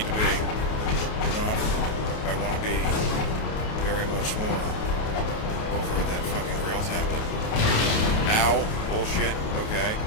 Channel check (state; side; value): late; right; 28 ms